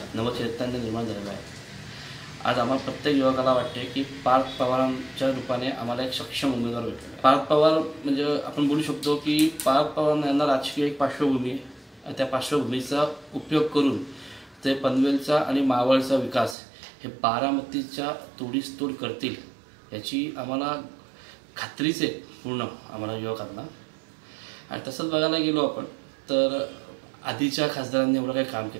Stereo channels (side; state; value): left; drops out; at 16.6 s